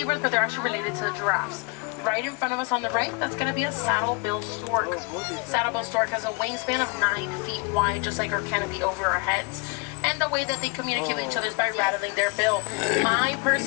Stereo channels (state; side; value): quieter; right; 30.2 dB